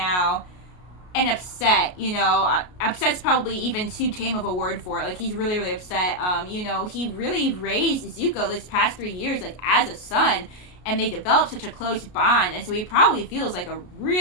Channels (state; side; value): late; right; 33 ms